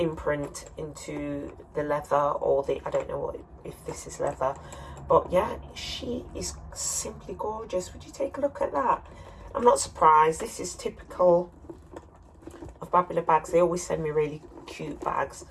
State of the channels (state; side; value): identical; both; correlation 1.00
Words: into the leather, or the, I don't know what, if this is leather, but yeah, she is simply gorgeous. Would you take a look at that? I'm not surprised. This is typical of Babalabags. They always send me really cute bags,